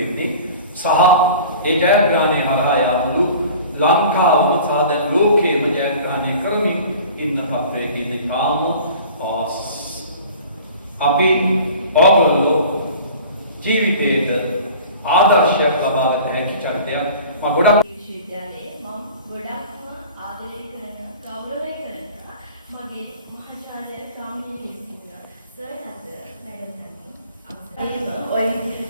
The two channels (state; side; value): inverted; both; correlation -0.44